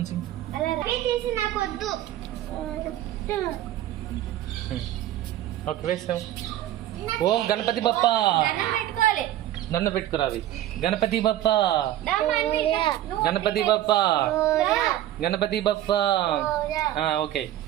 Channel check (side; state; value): left; quieter; 13.3 dB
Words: ఓకే వేసాం. ఓం గణపతి బప్ప. దండ పెట్టుకురావి. గణపతి బప్ప. గణపతి బప్ప. గణపతి బప్ప. ఓకే.